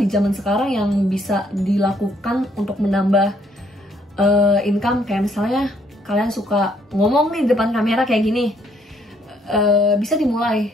zaman sekarang yang bisa dilakukan untuk menambah income. Kayak misalnya kalian suka ngomong nih di depan kamera kayak gini, bisa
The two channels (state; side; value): normal; both; correlation 0.68